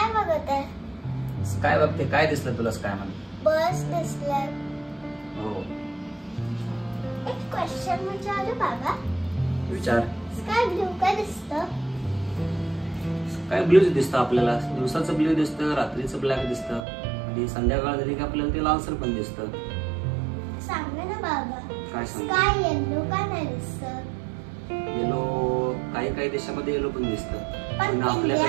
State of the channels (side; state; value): left; drops out; at 16.9 s